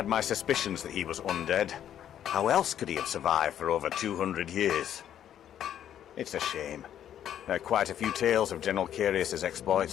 my suspicions that he was undead. How else could he have survived for over 200 years? It's a shame. There are quite a few tales of General Carius's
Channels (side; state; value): right; quieter; 10.4 dB